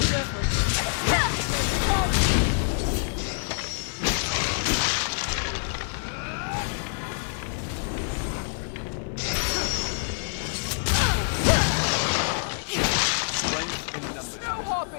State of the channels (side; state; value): right; silent; digital silence